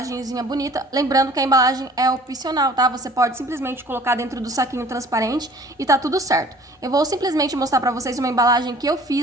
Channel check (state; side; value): normal; both; correlation 0.51